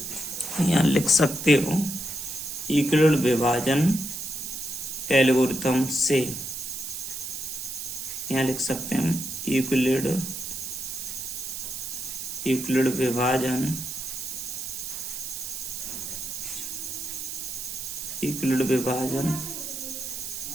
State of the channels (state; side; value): noise; right; hiss, 6 dB below the sound